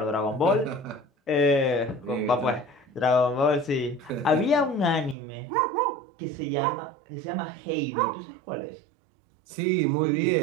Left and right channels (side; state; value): left; drops out; at 5.2 s